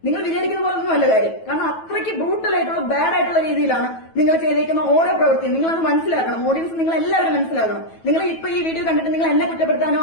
നിങ്ങൾ വിചാരിക്കുന്ന പോലെ ഒന്നും അല്ല കാര്യം. കാരണം അത്രയ്ക്ക് ബ്രൂട്ടൽ ആയിട്ടുള്ള ബാഡ് ആയിട്ടുള്ള രീതിയിലാണ് നിങ്ങൾ ചെയ്തേക്കുന്ന ഓരോ പ്രവൃത്തിയും. നിങ്ങളത് മനസ്സിലാക്കണം. ഓഡിയൻസ് നിങ്ങൾ എല്ലാവരും മനസ്സിലാക്കണം. നിങ്ങൾ ഇപ്പൊ ഈ വീഡിയോ കണ്ടിട്ട് നിങ്ങൾ എന്നെ കുറ്റപ്പെടുത്താനോ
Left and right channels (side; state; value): right; late; 9.2 ms